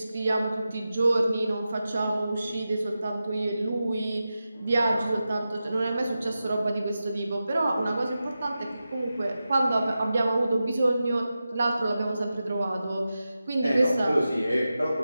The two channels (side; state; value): both; inverted; correlation -0.92